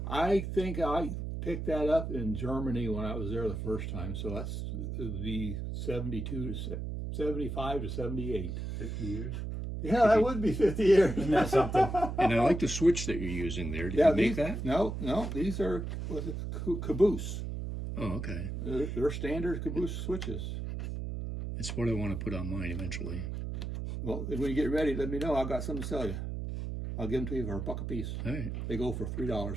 I think I picked that up in Germany when I was there the first time. So that's the 72 to 75 to 78. 50 years. Yeah, that would be 50 years. Isn't that something? And I like the switch that you're using there. Did you make these, that? No, these are caboose. Oh, okay. They're standard caboose switches. It's what I want to put on mine eventually. Well, when you get ready, let me know. I've got something to sell you. I'll give them to you for $1 a piece. All right, They go for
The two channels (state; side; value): noise; right; hum, 4 dB below the sound